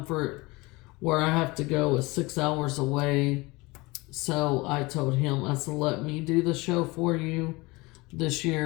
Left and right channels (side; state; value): right; quieter; 23.3 dB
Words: Where I have to go is 6 hours away. So I told him, I said, let me do the show for you this